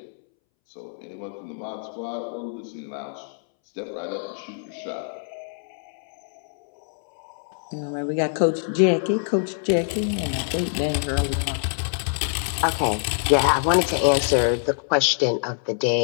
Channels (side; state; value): right; silent; 62 dB below the other